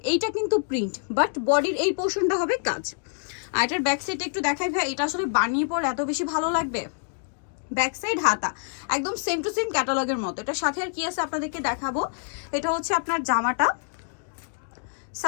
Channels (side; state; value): right; silent; digital silence